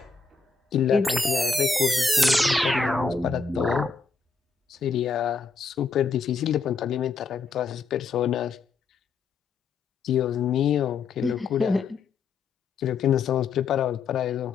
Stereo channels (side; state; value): right; quieter; 4.6 dB